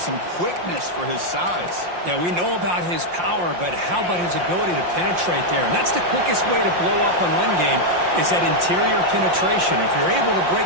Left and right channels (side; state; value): left; late; 5.7 ms